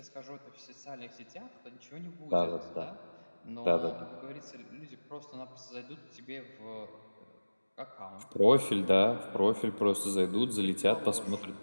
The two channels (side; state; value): both; inverted; correlation -1.00